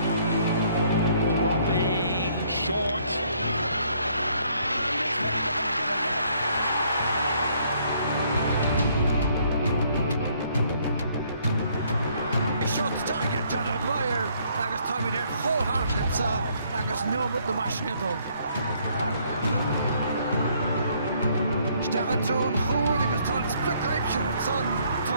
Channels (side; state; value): both; inverted; correlation -0.66